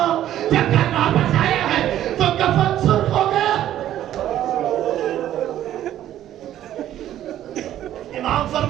جب گھر واپس آیا ہے تو کفن سرخ ہو گیا. امام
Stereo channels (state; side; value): quieter; left; 12.1 dB